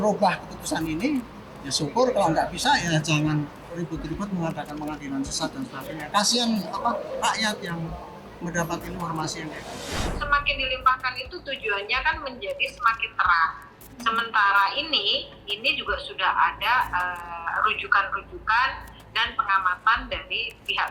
keputusan ini, ya syukur. Kalau nggak bisa, ya jangan ribut-ribut mengatakan pengadilan sesat dan sebagainya. Kasihan rakyat yang mendapat informasi yang kayak gitu. Semakin dilimpahkan itu tujuannya kan menjadi semakin terang. Sementara ini juga sudah ada rujukan-rujukan dan pengamatan dari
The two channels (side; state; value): both; identical; correlation 1.00